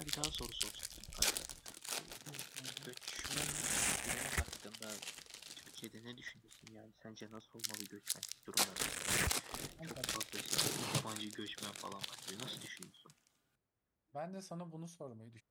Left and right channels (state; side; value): identical; both; correlation 1.00